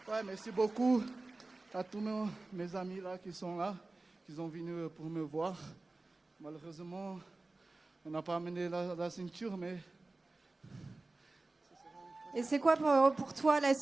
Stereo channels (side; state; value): left; quieter; 3.2 dB